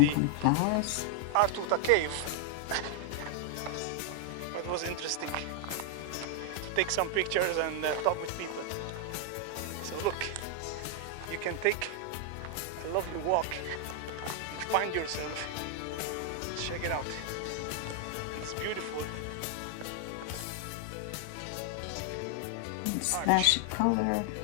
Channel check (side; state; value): both; different; correlation 0.00